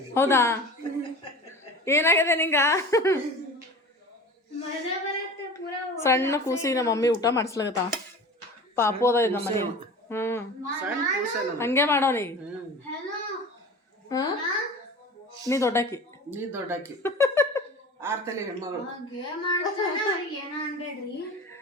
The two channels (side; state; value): both; normal; correlation 0.36